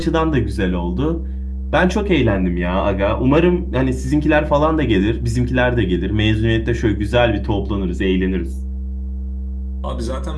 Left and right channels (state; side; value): identical; both; correlation 1.00